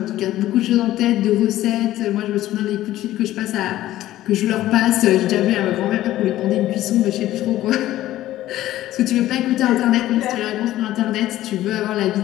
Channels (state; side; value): quieter; right; 14.5 dB